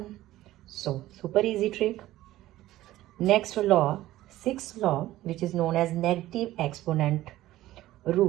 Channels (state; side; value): quieter; left; 15.4 dB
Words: So super easy trick. Next law, 6th law which is known as negative exponent